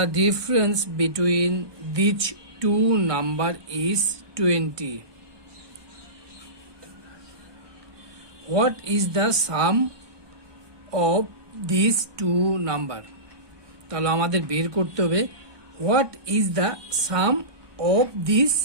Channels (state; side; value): late; left; 1.2 ms